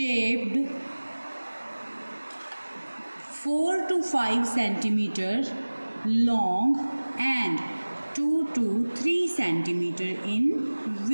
4 to 5 centimeter long and 2 to 3 centimeter in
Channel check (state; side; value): inverted; both; correlation -1.00